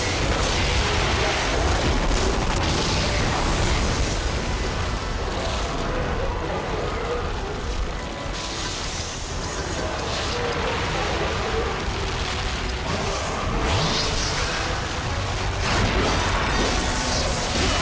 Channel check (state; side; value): identical; both; correlation 1.00